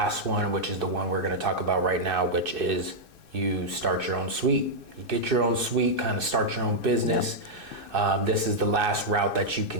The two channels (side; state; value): left; late; 2.6 ms